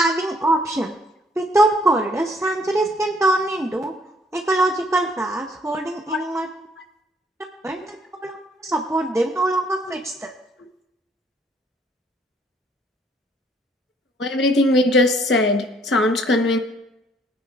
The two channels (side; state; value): both; normal; correlation 0.64